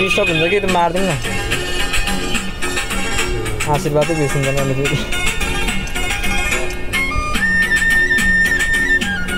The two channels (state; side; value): identical; both; correlation 1.00